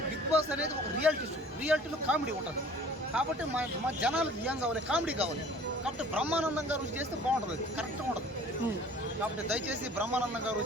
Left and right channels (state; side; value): normal; both; correlation 0.49